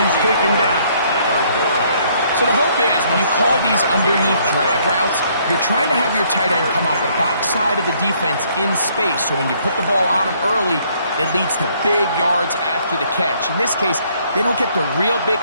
taken down. So the hope is when you call these underneath drag routes, you're trying to have your tight end come out the backside of the defense in space. So when you put the ball on him early, it leads to big yards after the catch. In this case, they don't get the real big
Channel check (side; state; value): both; inverted; correlation -0.66